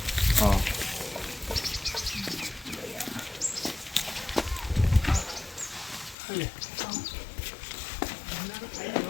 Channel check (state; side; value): drops out; right; at 6.2 s